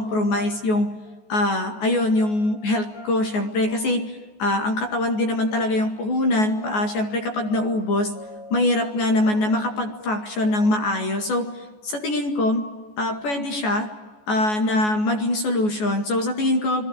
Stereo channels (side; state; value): right; late; 14 ms